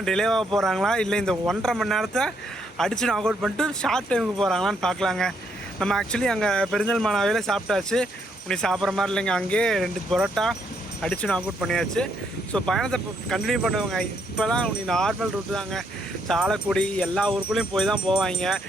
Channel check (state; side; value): normal; both; correlation 0.73